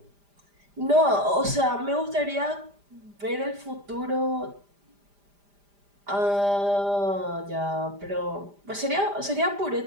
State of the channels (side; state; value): left; late; 5.0 ms